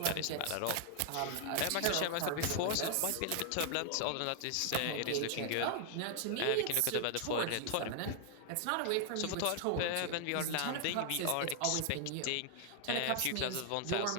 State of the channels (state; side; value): different; both; correlation 0.00